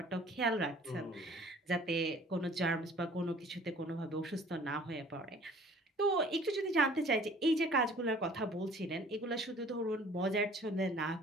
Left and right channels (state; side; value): normal; both; correlation 0.52